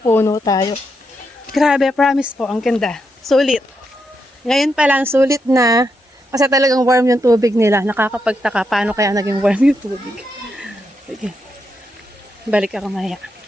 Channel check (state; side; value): normal; both; correlation 0.82